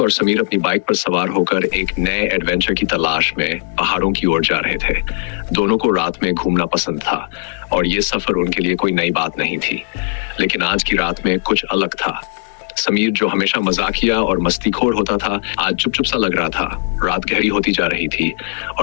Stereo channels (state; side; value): silent; right; digital silence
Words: और समीर अपनी बाइक पर सवार होकर एक नए एडवेंचर की तलाश में पहाड़ों की ओर जा रहे थे। दोनों को रात में घूमना पसंद था और ये सफर उनके लिए कोई नई बात नहीं थी, लेकिन आज की रात में कुछ अलग था। समीर, जो हमेशा मजाकिया और मस्तीखोर होता था, आज चुप सा लग रहा था। रात गहरी होती जा रही थी